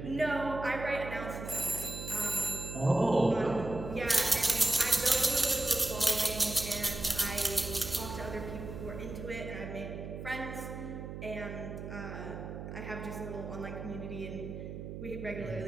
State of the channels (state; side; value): noise; right; hum, 8 dB below the sound